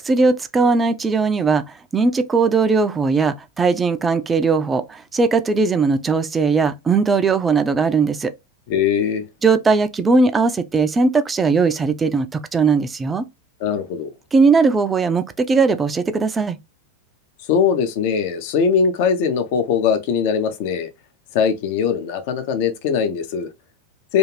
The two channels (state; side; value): normal; both; correlation 0.52